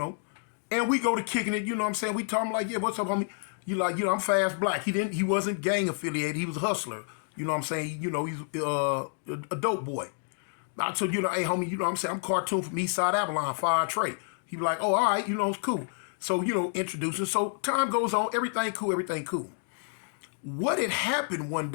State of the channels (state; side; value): silent; right; 58 dB below the other